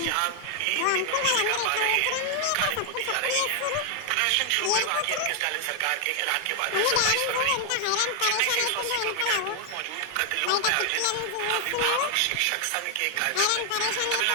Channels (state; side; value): different; both; correlation 0.00